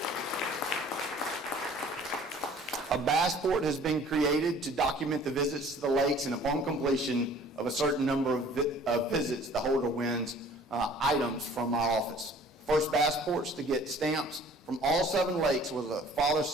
A bass port has been created to document the visits to the lakes, and upon completion of a certain number of visits, the holder wins items from our office. First bass ports to get stamps from all 7 lakes was a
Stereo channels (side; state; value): both; normal; correlation 0.51